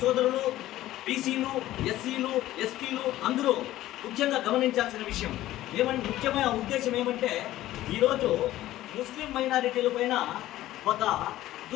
సోదరులు బీసీలు ఎస్సీలు ఎస్టీలు అందరూ ముఖ్యంగా గమనించాల్సిన విషయం ముఖ్యమైన ఉద్దేశం ఏమంటే ఈరోజు ముస్లిం మైనారిటీల పైన ఒక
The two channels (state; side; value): quieter; right; 14.9 dB